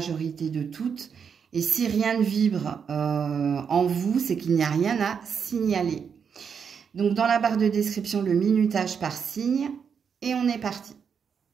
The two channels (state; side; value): quieter; left; 6.7 dB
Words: de toutes. Et si rien ne vibre en vous, c'est qu'il n'y a rien à signaler. Donc dans la barre de description, le minutage par signe. Et on est parti.